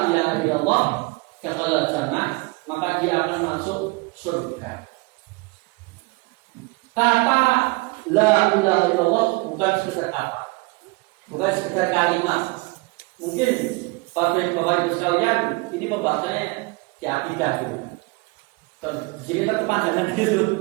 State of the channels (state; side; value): quieter; left; 26.0 dB